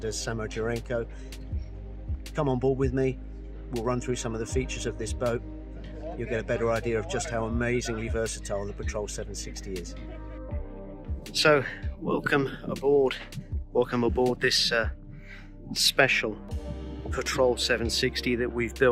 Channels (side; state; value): both; identical; correlation 1.00